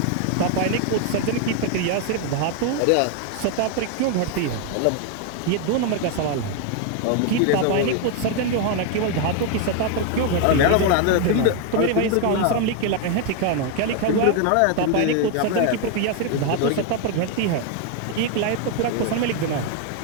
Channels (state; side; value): different; both; correlation 0.01